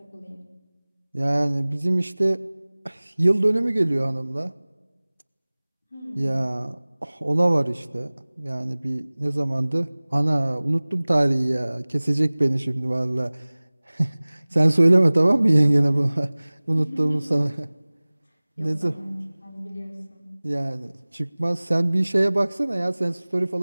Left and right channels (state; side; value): inverted; both; correlation -1.00